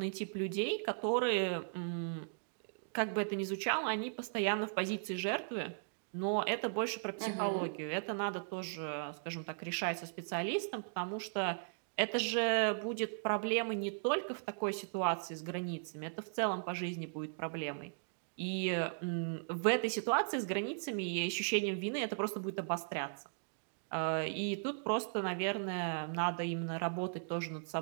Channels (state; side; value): silent; left; digital silence